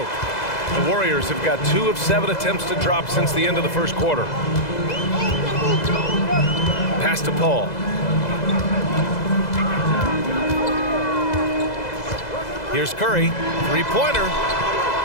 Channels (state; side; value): late; right; 2.0 ms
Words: The Warriors have got 2 of 7 attempts to drop since the end of the first quarter. Pass to Paul. Here's Curry. 3-pointer.